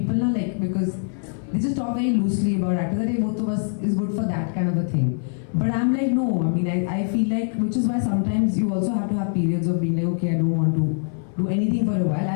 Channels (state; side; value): silent; right; 61 dB below the other